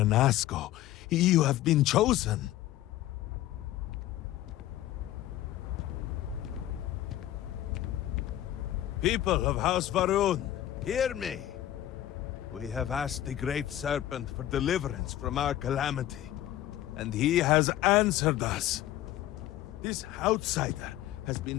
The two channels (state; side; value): quieter; right; 13.6 dB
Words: You have been chosen. People of House Varun, hear me. We have asked the Great Serpent for deliverance from our calamity. and he has answered us. This outsider has